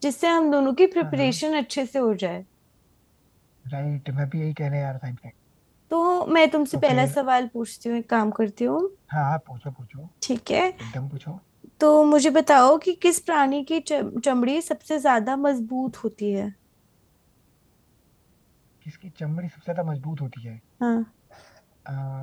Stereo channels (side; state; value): both; identical; correlation 1.00